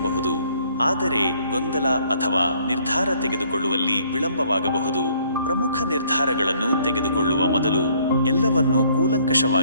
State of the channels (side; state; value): both; inverted; correlation -0.63